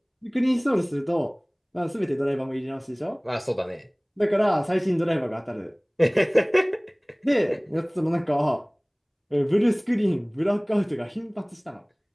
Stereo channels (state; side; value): identical; both; correlation 1.00